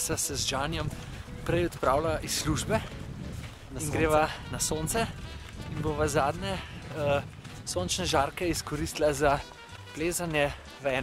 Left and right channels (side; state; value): both; identical; correlation 1.00